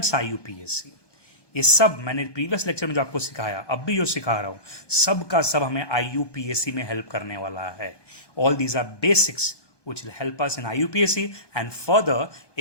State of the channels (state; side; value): late; right; 1.2 ms